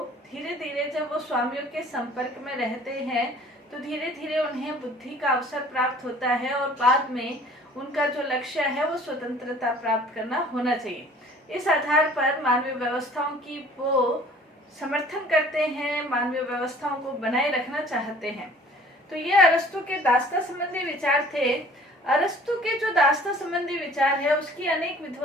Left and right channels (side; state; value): both; normal; correlation 0.51